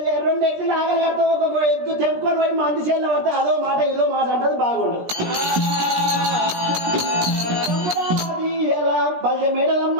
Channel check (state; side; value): late; left; 17 ms